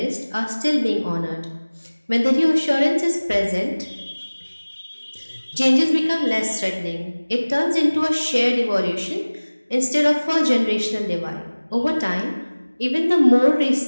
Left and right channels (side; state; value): both; inverted; correlation -1.00